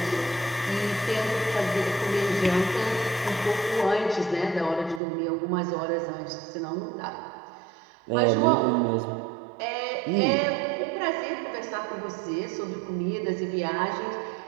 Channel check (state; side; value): drops out; left; at 5.0 s